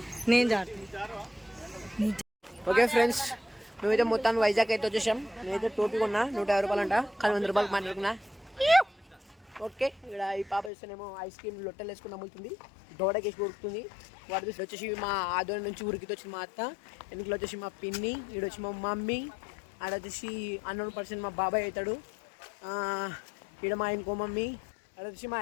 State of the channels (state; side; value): drops out; right; at 10.7 s